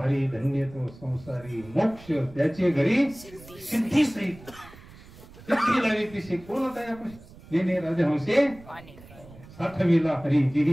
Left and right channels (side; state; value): right; noise; rumble, 20 dB below the sound